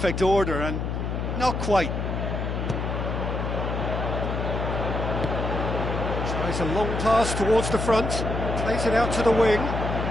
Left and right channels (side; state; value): left; noise; hum, 2 dB below the sound